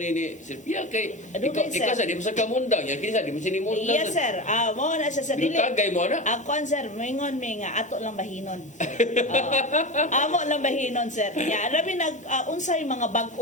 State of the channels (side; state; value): both; normal; correlation 0.24